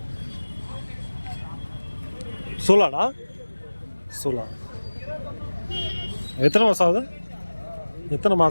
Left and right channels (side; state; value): both; inverted; correlation -1.00